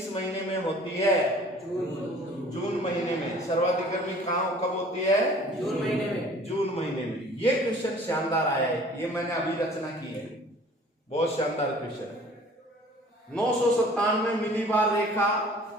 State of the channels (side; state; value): both; normal; correlation 0.50